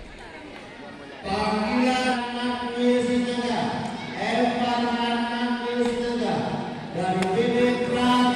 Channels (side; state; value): both; identical; correlation 1.00